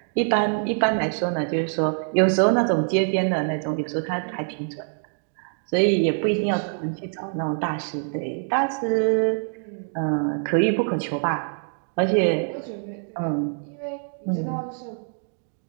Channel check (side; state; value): left; silent; 59 dB below the other